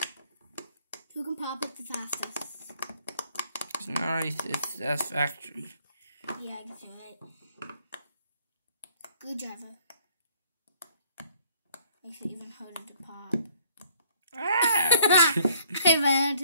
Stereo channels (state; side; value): inverted; both; correlation -0.61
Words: Who can pop it the fastest? It's nice, it's satisfactory. Yeah, I guess you're right. Good driver. Makes it even harder to pop. I ran